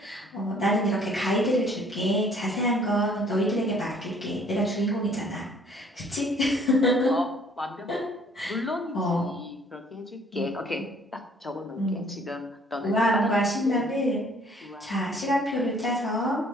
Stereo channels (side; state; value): both; normal; correlation 0.58